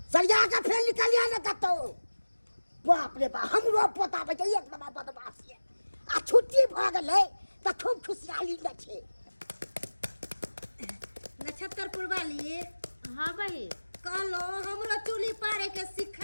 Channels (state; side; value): inverted; both; correlation -1.00